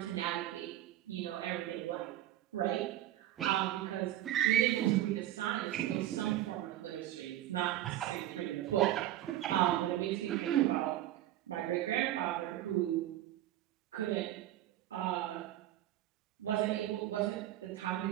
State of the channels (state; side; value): quieter; left; 13.5 dB